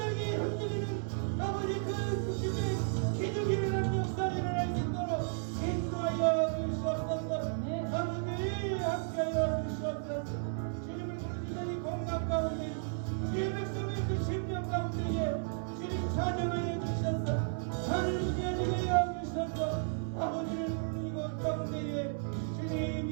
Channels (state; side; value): silent; left; digital silence